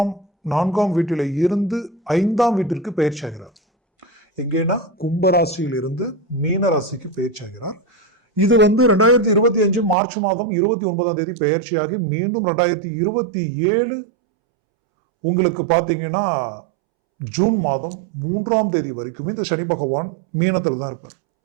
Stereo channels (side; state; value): left; drops out; at 10.0 s